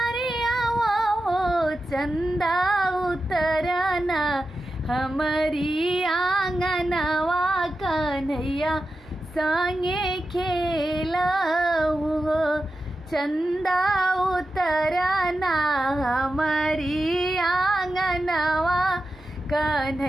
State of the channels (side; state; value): both; normal; correlation 0.91